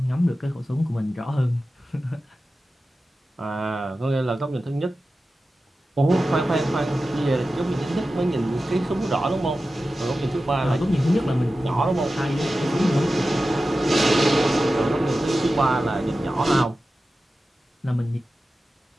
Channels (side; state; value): both; normal; correlation 0.94